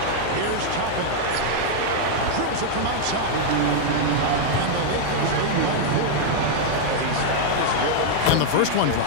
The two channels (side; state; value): both; different; correlation -0.01